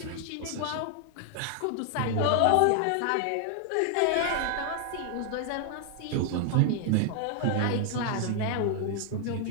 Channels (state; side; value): different; both; correlation 0.00